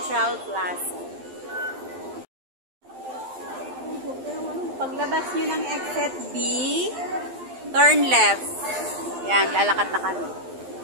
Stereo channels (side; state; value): left; late; 12 ms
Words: Plaza. Paglabas nyo ng exit B, turn left. Yan, lalakad na kami.